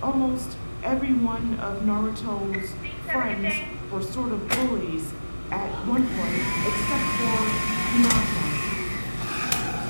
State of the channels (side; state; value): both; inverted; correlation -1.00